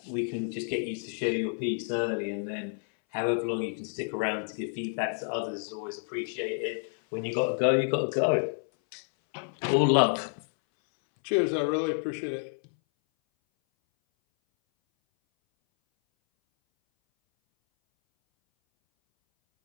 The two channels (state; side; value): silent; right; 58 dB below the other